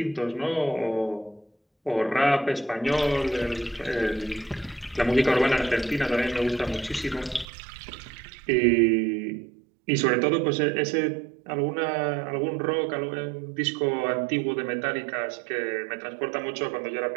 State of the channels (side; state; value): left; drops out; at 7.5 s